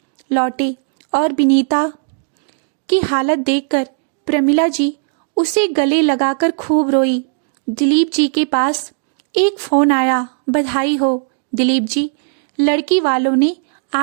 लौटे और बिनीता की हालत देखकर प्रमिला जी उसे गले लगाकर खूब रोई। दिलीप जी के पास एक फोन आया। बधाई हो दिलीप जी, लड़की वालों ने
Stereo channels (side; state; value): left; silent; digital silence